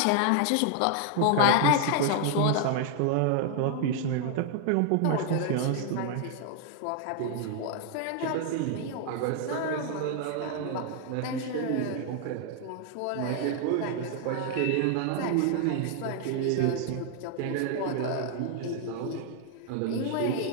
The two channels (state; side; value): different; both; correlation 0.00